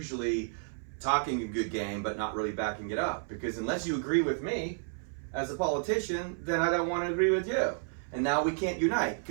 talking a good game, but not really backing it up. Because unless you agree with me as a politician, then I don't want to agree with you. And now we can't unite,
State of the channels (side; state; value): left; silent; 55 dB below the other